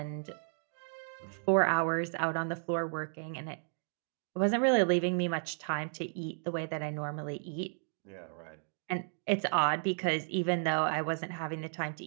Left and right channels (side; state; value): left; silent; digital silence